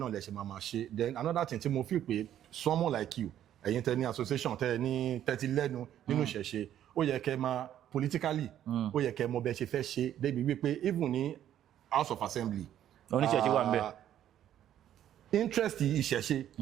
lẹ ṣe máa ṣe then another thing tí mo feel pé someone like you ẹ̀yin tẹ ní association tẹ ní tẹ́tí lẹ́nu nínú ìṣẹ̀ṣe ó yẹ kẹ́ máa politically ó yẹ kẹ́ mọ bẹ́ẹ̀ ṣe fẹ́ ṣe débi wípé even ní House of Assembly oníṣẹ̀ṣe wà ń bẹ̀ interest ìṣẹ̀ṣe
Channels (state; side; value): quieter; left; 11.1 dB